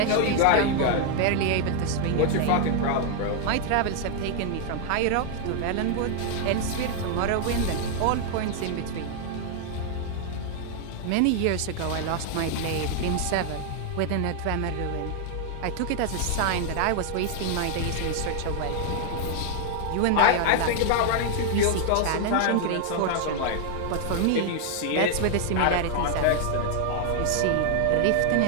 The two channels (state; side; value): different; both; correlation 0.00